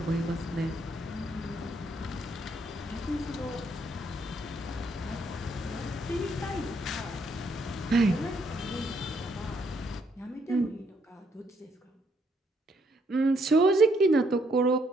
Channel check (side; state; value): both; normal; correlation 0.71